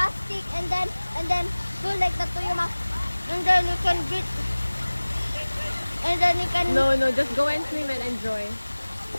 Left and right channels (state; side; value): inverted; both; correlation -1.00